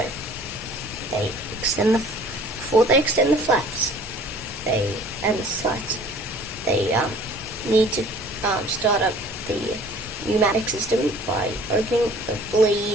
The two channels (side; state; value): both; normal; correlation 0.51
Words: before they extend the flaps, and the slats, they need to start up the pneumatic system by opening the